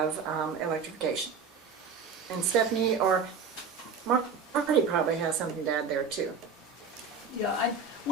electrification. And Stephanie or Marty probably has something to add there too. Yeah,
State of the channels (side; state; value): left; quieter; 5.4 dB